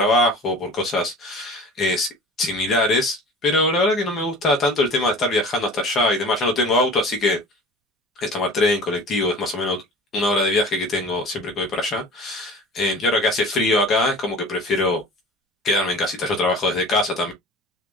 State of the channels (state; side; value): normal; both; correlation 0.40